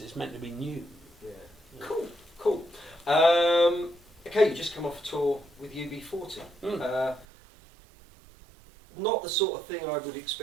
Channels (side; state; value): left; drops out; at 7.2 s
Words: meant to be new. Yeah. Cool. Okay, you just come off a tour with UB40. Not the sort of thing I would